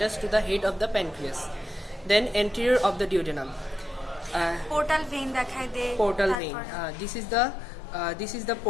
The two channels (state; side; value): drops out; right; at 6.4 s